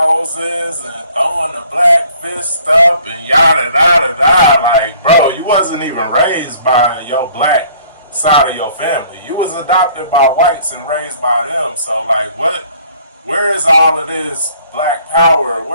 and throwing the black fist up and yada yada yada. Like, bro, you wasn't even raised by your black side of your family. You was adopted by whites and raised by them. So like, what? Where is all of this black power?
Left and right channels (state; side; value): inverted; both; correlation -0.57